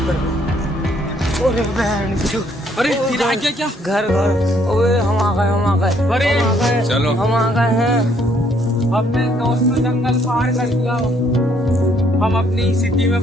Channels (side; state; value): both; normal; correlation 0.66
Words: कर दो। अरे बहन चो, अरे फिर आ गया क्या? घर ओए हम आ गए अरे चलो हम आ गए हैं। अपने दोस्त ने जंगल पार कर दिया, हम अपनी सिटी में